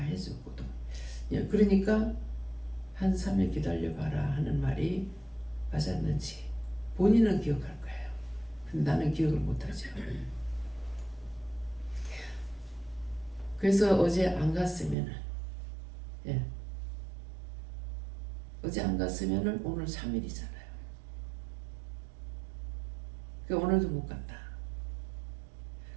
그러니까 한 3일 기다려봐라 하는 말이 맞았는지 본인은 기억할 거예요. 근데 나는 기억을 못하죠. 그래서 어제 안 갔으면은 어제 안 갔으면은 오늘 3일이잖아요. 그러니까 오늘도 못 갔다.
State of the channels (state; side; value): drops out; left; at 15.0 s